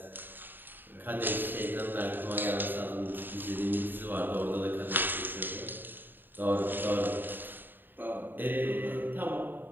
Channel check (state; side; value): late; left; 0.093 ms